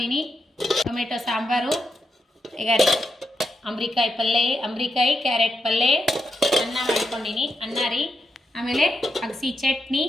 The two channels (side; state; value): both; normal; correlation 0.84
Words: ಟೊಮೆಟೊ ಸಾಂಬಾರು, ಈಗ ರೀ ಅಂಬ್ರಿಕಾಯಿ ಪಲ್ಯ, ಅಂಬ್ರಿಕಾಯಿ ಕ್ಯಾರೆಟ್ ಪಲ್ಯ, ಅನ್ನ ಮಾಡ್ಕೊಂಡಿನಿ. ಅನ್ನ ರೀ, ಆಮೇಲೆ ಅಗಸಿ ಚಟ್ನಿ,